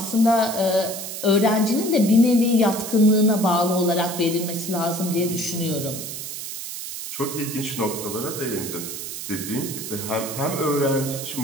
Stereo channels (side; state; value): right; noise; hiss, 8 dB below the sound